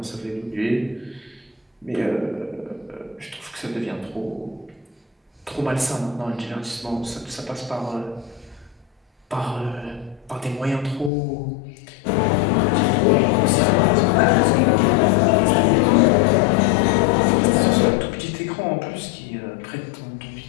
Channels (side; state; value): right; drops out; at 11.1 s